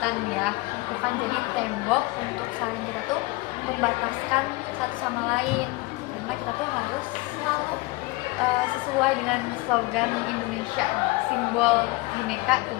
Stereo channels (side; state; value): right; quieter; 22.8 dB